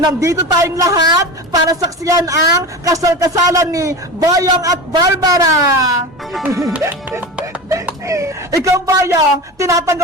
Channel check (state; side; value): normal; both; correlation 0.28